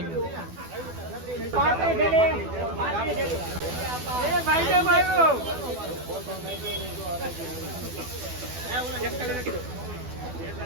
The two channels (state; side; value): late; left; 12 ms